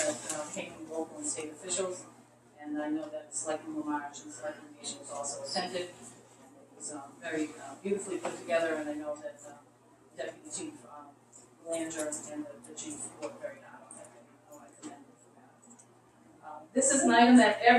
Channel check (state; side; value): identical; both; correlation 1.00